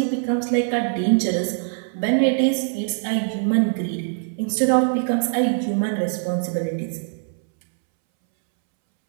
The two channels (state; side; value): silent; left; 64 dB below the other